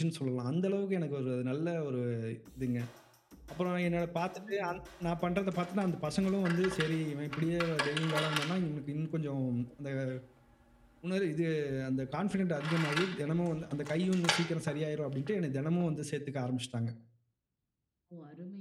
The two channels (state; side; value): identical; both; correlation 1.00